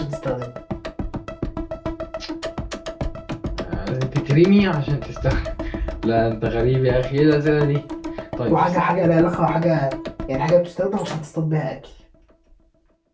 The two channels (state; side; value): identical; both; correlation 1.00